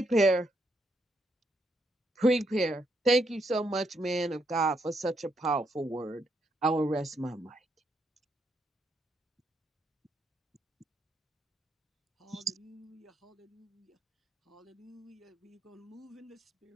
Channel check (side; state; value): both; normal; correlation 0.77